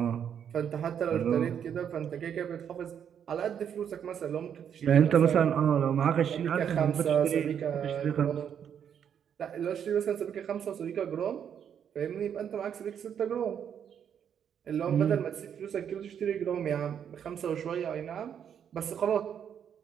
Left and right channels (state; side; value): quieter; left; 8.5 dB